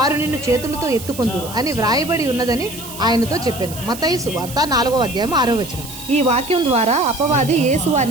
నిన్ను చేతులతో ఎత్తుకొందురు అని వ్రాయబడి ఉన్నదని ఆయనతో చెప్పాను. మత్తయి సువార్త 4వ అధ్యాయం 6వ వచనం. ఈ వాక్యం ద్వారా అపవాది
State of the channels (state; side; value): noise; right; hiss, 13 dB below the sound